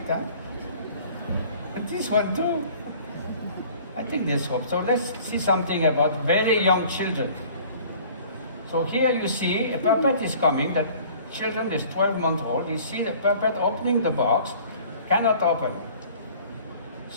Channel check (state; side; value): inverted; both; correlation -0.50